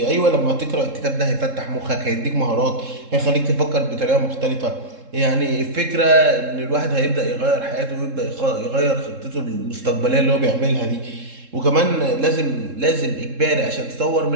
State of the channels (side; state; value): left; late; 3.7 ms